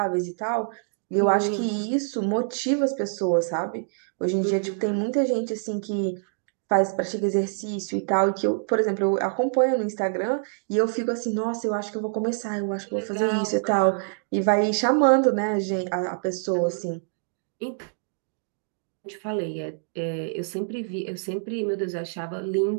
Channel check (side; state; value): left; silent; digital silence